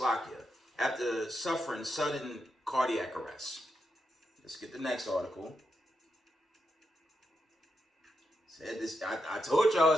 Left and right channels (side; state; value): both; normal; correlation 0.85